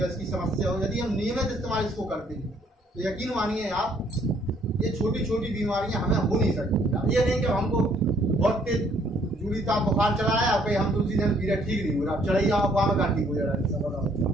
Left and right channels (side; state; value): both; normal; correlation 0.64